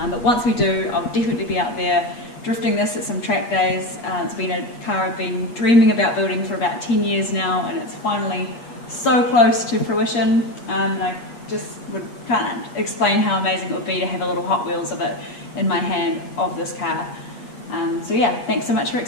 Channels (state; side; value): late; right; 8.4 ms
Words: But once we do, I'll definitely be out there drifting this at some track days. It's been a car I've been dreaming about building for about 10 years now, and it's finally so close to fruition. And I just can't explain how amazing it would be to have a little Hot Wheels of it in my hand of this car. So yeah, thanks so much for